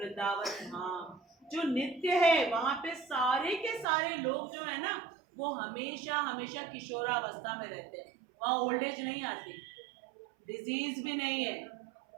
धाम जो नित्य है। वहां पे सारे के सारे लोग जो है ना वो हमेशा हमेशा किशोरावस्था में रहते हैं। वहां ओल्ड एज नहीं आती, डिजीज भी नहीं है।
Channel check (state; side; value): drops out; left; at 3.9 s